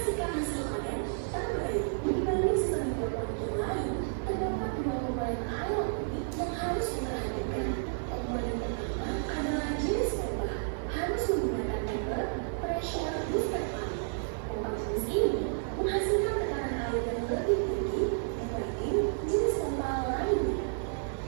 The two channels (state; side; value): silent; left; digital silence